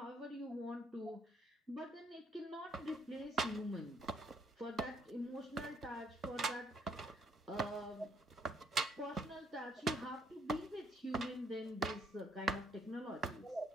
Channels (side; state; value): both; normal; correlation 0.68